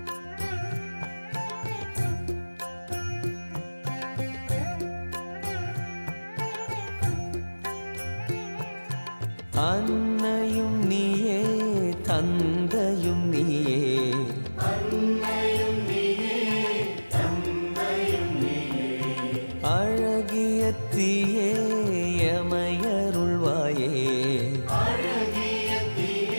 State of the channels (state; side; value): inverted; both; correlation -1.00